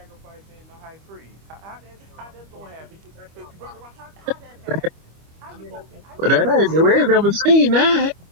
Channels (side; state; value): left; late; 25 ms